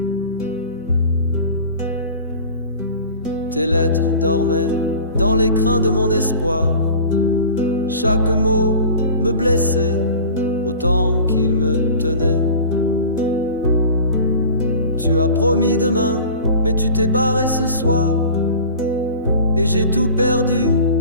Tes lettres dormaient dans l'écrin de mon espoir. Chaque mot me blessait autant qu'il me tenait. Tu as promis demain, mais tu t'es barré ce soir. Et j'ai tout perdu,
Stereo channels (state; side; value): inverted; both; correlation -0.40